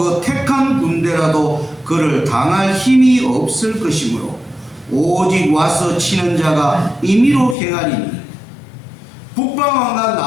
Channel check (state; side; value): drops out; right; at 7.6 s